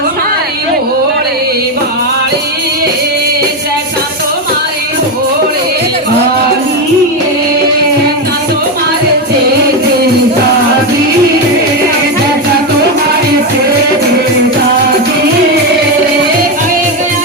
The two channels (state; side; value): normal; both; correlation 0.10